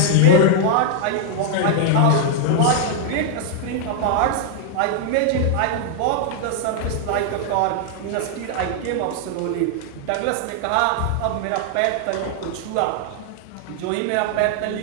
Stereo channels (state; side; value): different; both; correlation 0.00